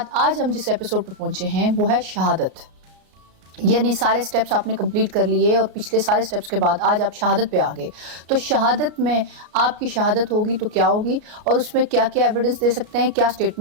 आज हम जिस एपिसोड पर पहुंचे हैं वो है शहादत। यानी सारे स्टेप्स आपने कंप्लीट कर लिए और पिछले सारे स्टेप्स के बाद आज आप शहादत पे आ गए। तो शहादत में आपकी शहादत होगी तो क्या होगी और उसमें क्या क्या एविडेंस दे सकते हैं, क्या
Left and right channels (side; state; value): left; late; 34 ms